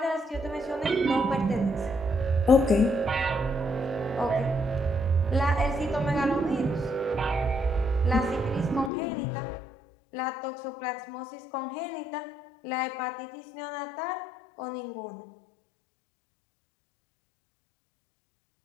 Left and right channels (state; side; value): drops out; right; at 8.9 s